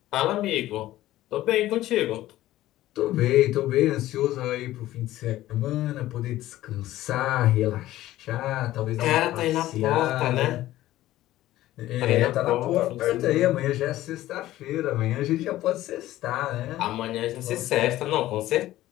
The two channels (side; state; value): right; quieter; 15.1 dB